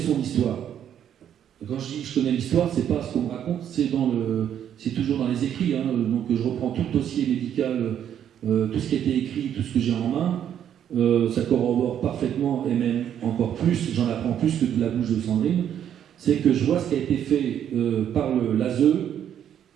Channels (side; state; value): left; quieter; 9.7 dB